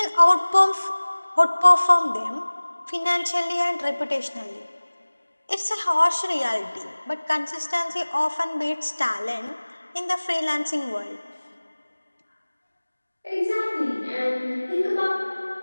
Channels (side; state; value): both; inverted; correlation -1.00